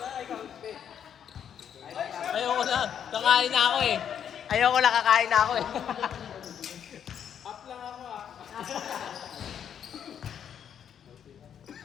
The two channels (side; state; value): right; quieter; 8.7 dB